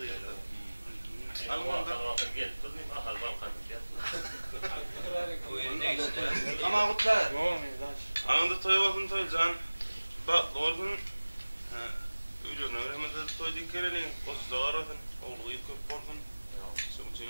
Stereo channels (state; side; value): inverted; both; correlation -1.00